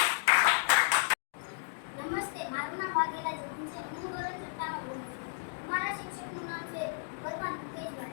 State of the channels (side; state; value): right; silent; digital silence